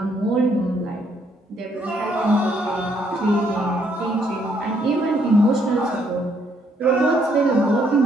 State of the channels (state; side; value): normal; both; correlation 0.70